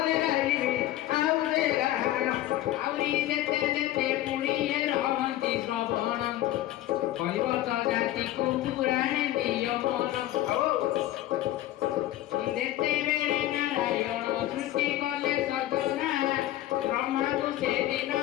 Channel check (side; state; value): right; quieter; 14.4 dB